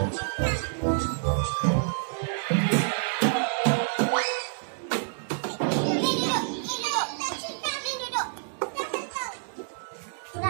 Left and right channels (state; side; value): silent; left; digital silence